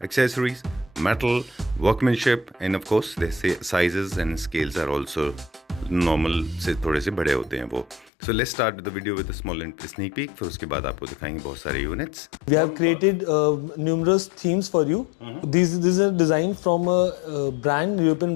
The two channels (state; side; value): drops out; right; at 8.1 s